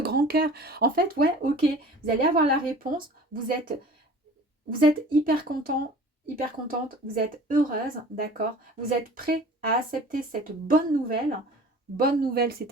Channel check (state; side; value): normal; both; correlation 0.44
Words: cœur. En fait, ouais, ok. Vous allez avoir la réponse. Vous êtes hyper content, hyper contente. Vous êtes heureuse, d'accord? Vous êtes prêt à accepter cette bonne nouvelle. Bonne nouvelle, c'est